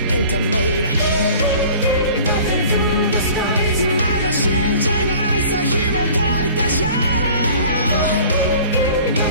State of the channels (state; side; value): inverted; both; correlation -0.46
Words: エンタメだまだ信じないさ紐解いたシャ